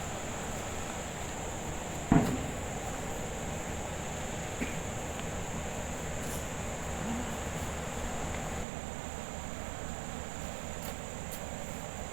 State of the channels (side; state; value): left; drops out; at 8.7 s